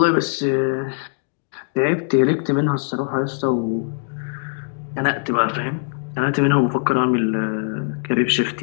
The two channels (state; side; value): silent; right; 65 dB below the other